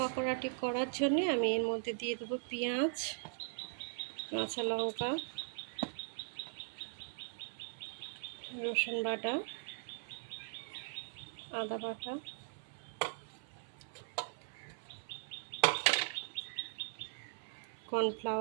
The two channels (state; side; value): silent; left; 51 dB below the other